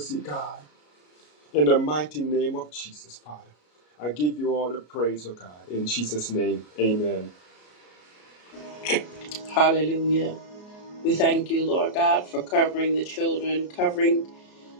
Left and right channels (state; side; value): late; right; 33 ms